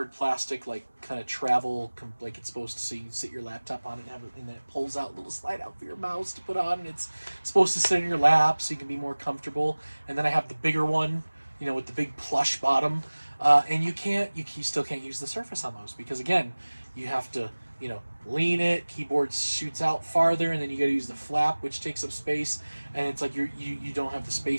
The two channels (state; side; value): inverted; both; correlation -1.00